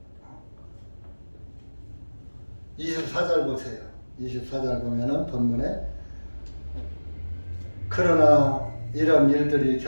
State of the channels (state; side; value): inverted; both; correlation -1.00